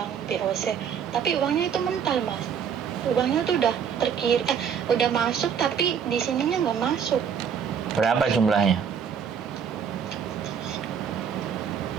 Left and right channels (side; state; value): left; quieter; 7.5 dB